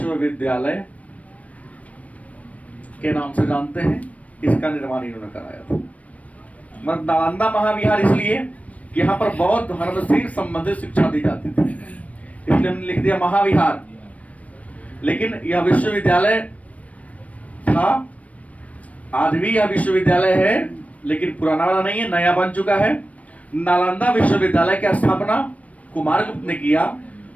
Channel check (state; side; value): late; right; 0.067 ms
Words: के नाम से जानते हैं, इसका निर्माण इन्होंने कराया था। मतलब नालंदा महाविहार इसलिए कि यहाँ पर बौद्ध धर्म से संबंधित शिक्षा दी जाती थी, इसलिए हमने लिख दिया महाविहार। लेकिन यह विश्वविद्यालय था, आज भी यह विश्वविद्यालय है, लेकिन पुराना वाला नहीं है, नया बन चुका है। नालंदा विश्वविद्यालय की स्थापना कुमारगुप्त ने किया।